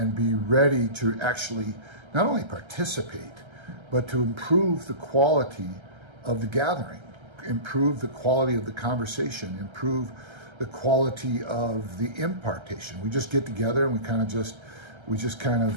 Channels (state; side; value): late; left; 1.3 ms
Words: be ready to actually not only participate, but to improve the quality of the gathering, improve the quality of the conversation, improve the quality of the impartation. We just get together and we just kind